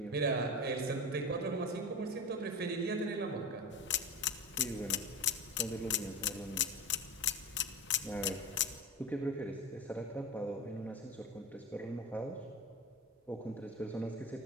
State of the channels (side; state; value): both; normal; correlation 0.25